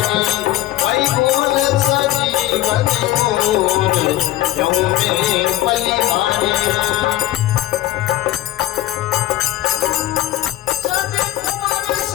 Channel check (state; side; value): quieter; right; 15.2 dB